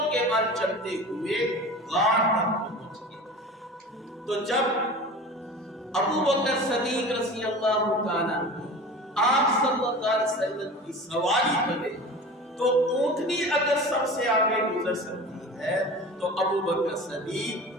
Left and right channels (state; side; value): normal; both; correlation 0.36